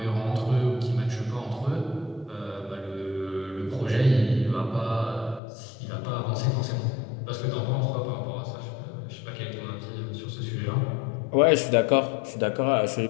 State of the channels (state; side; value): drops out; right; at 5.4 s